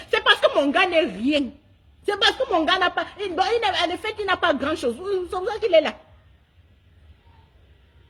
c'est parce que mon gars n'est rien. C'est parce que mon gars n'a pas, en effet, il n'a pas grand chose. C'est pour ça qu'il est là.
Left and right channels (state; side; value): identical; both; correlation 1.00